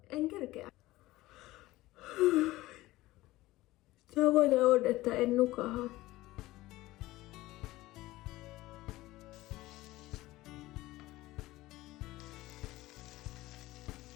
en kerkeä. Tavoite on, että en nukaha.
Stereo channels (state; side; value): quieter; right; 17.9 dB